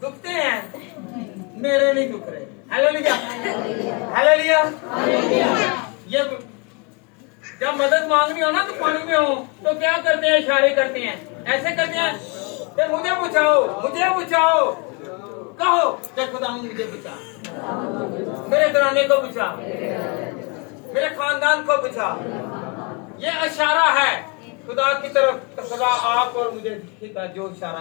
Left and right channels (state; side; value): quieter; right; 32.6 dB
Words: दुखते हैं, मेरे नहीं दुख रहे। Hallelujah, hallelujah. ये जब मदद मांगनी हो ना तो पानी में हो तो क्या करते हैं? इशारे करते हैं, ऐसे करते हैं कि मुझे बचाओ, मुझे बचाओ। कहो कि खुदा मुझे बचा, मेरे घराने को बचा, मेरे खानदान को बचा। ये इशारा है खुदा की तरफ। खुदा आप और मुझे दिखेगा जो इशारा